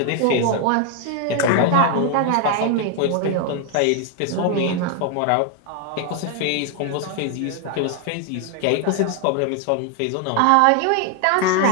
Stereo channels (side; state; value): both; different; correlation 0.00